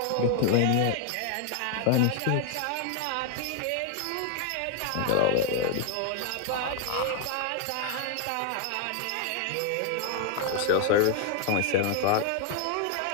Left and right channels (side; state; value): both; different; correlation 0.00